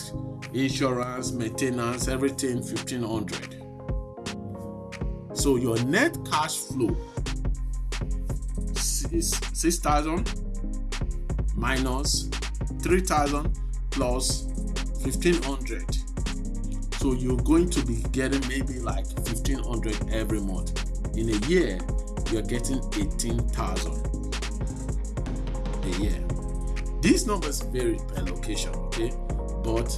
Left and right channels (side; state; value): both; identical; correlation 1.00